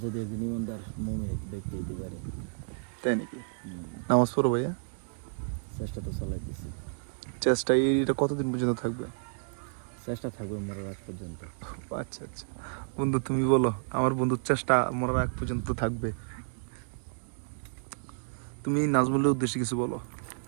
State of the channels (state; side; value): silent; left; digital silence